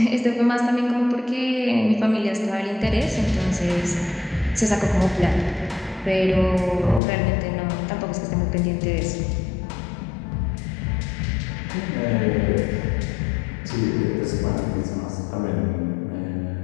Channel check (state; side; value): drops out; right; at 7.0 s